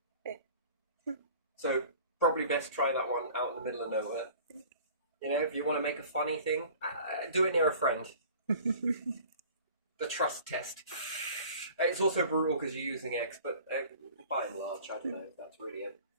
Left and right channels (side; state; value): both; inverted; correlation -0.46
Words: So probably best try that one out in the middle of nowhere. You know, if you want to make a funny thing, do it near a friend. The trust test. It's also brutal because you're using eggs, but by and large, I don't know if that's really a